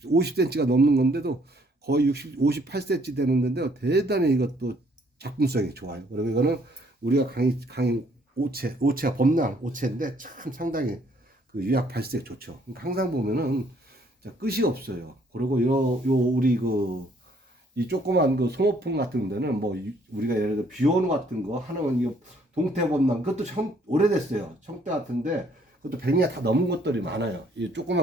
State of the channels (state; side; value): normal; both; correlation 0.65